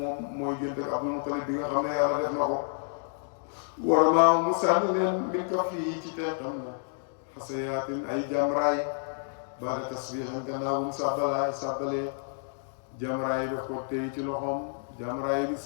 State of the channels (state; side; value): silent; right; digital silence